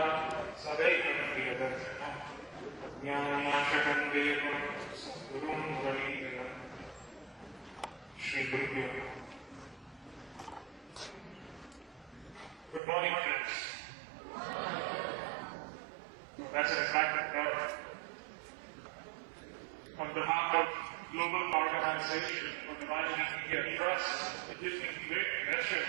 Good morning, friends. That's an attractive crowd. On behalf of Global Organization for Divinity India Trust, it gives me great pleasure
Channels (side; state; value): left; drops out; at 12.8 s